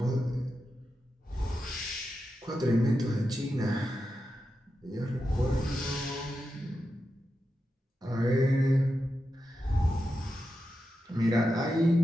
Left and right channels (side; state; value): both; normal; correlation 0.89